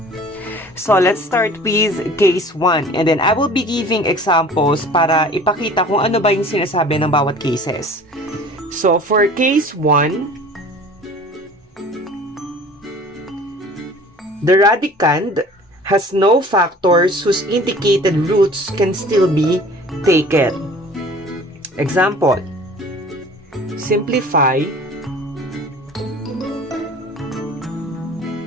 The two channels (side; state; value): both; normal; correlation 0.46